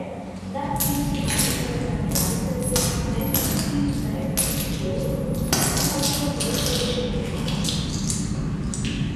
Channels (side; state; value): both; identical; correlation 1.00